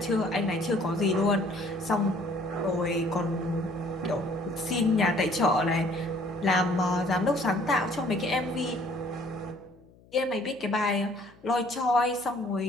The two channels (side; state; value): left; noise; hum, 27 dB below the sound